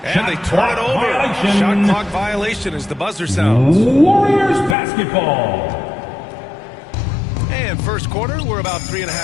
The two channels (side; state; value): right; drops out; at 4.8 s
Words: And they turn it over. Violation. Shot clock violation as the buzzer sounds. Warriors basketball. And first quarter, we're about